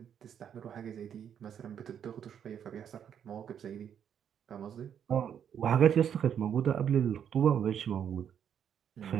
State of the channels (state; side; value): quieter; left; 8.6 dB